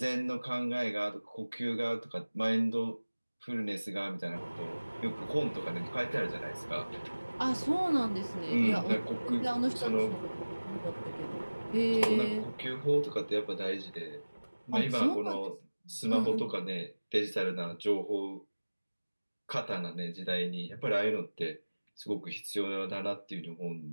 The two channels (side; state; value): both; inverted; correlation -1.00